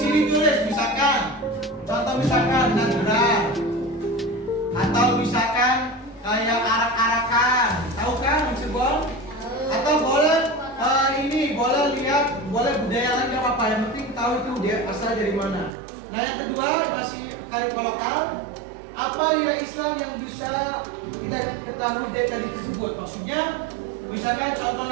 tulis misalkan, contoh misalkan nagrar, atau misalkan kayak arak-arakan, tahu kan maksudnya? Atau boleh boleh lihat, boleh budaya lain nggak apa-apa, yang penting tahu itu dia asal dari mana. Nah yang kedua masih kearifan lokal. Apa nilai Islam yang bisa kita ketahui dari tadi tersebut? Maksudnya, misalkan contoh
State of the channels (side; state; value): left; drops out; at 15.7 s